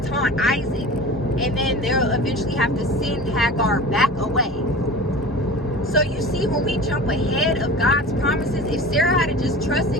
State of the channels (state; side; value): normal; both; correlation 0.36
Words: taunt Isaac, and then they'll eventually have to send Hagar back away. So you see, when we jump ahead of God's promises, if Sarah had just